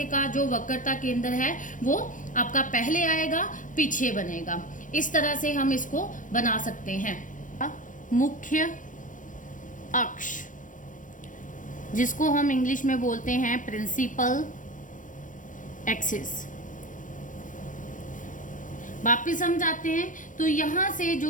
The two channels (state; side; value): late; right; 0.38 ms